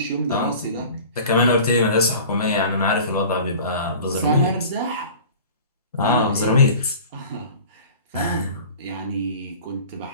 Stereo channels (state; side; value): inverted; both; correlation -0.41